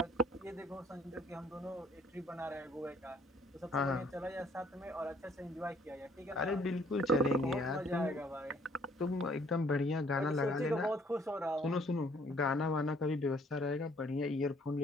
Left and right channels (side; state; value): both; normal; correlation 0.62